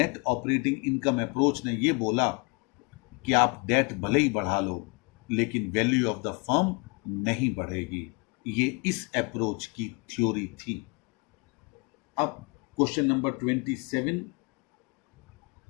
ऑपरेटिंग इनकम अप्रोच ने ये बोला कि आप डेट भले ही बढ़ा लो, लेकिन वैल्यू ऑफ द फर्म नहीं बढ़ेगी। ये इस अप्रोच की थ्योरी थी। अब क्वेश्चन नंबर 27,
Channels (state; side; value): quieter; right; 31.5 dB